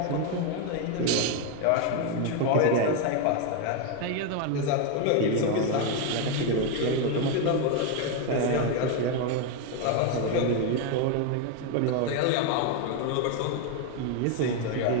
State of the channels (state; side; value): different; both; correlation 0.01